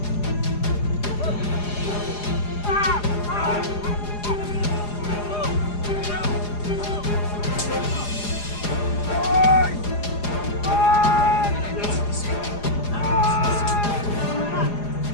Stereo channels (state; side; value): late; right; 4.9 ms